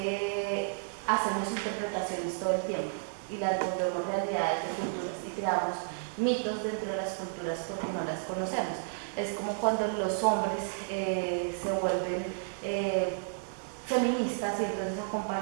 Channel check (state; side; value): silent; left; digital silence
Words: hacemos interpretaciones todo el tiempo y las volvemos realidades de culturas y creamos mitos dentro de las culturas porque no las conocemos. Es como cuando los hombres se vuelven feministas y entonces